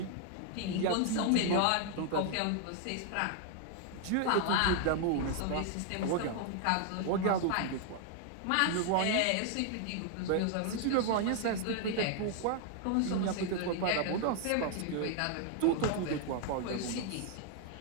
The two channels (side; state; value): both; different; correlation 0.00